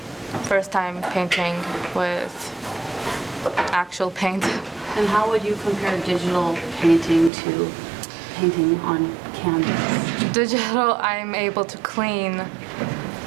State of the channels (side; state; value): left; drops out; at 7.3 s